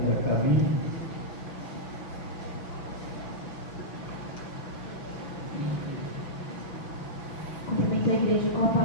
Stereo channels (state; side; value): late; right; 6.1 ms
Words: a caminho. Cumprimento a igreja com a